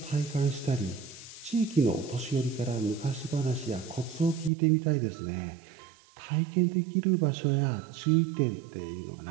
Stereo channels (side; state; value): left; drops out; at 4.5 s